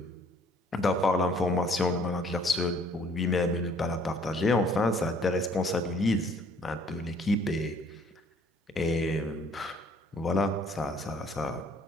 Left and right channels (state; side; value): normal; both; correlation 0.59